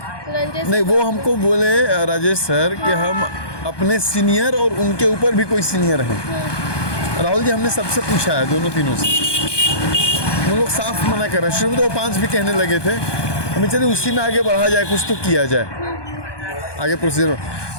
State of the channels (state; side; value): late; right; 1.2 ms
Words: नहीं, वो हमको बोले राजेश सर कि हम अपने सीनियर और उनके ऊपर भी कोई सीनियर हैं। राहुल जी, हमने सबसे पूछा है, दोनों तीनों से, वो लोग साफ मना कर रहे हैं। शुरू में तो वो 5 भी कहने लगे थे, हमें चलिए उसी में आगे बढ़ा जाए, कुछ तो किया जाए आगे प्रोसीजर।